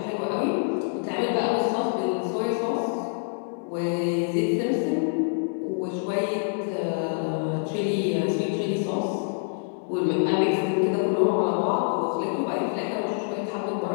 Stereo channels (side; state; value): right; silent; digital silence